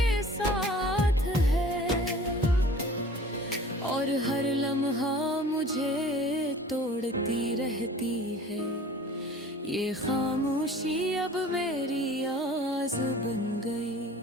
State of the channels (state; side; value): normal; both; correlation 0.45